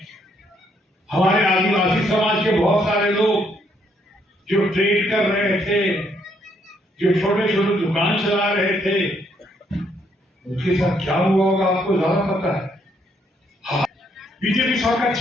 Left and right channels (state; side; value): normal; both; correlation 0.71